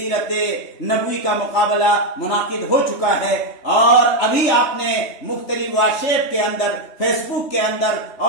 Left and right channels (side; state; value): right; late; 3.3 ms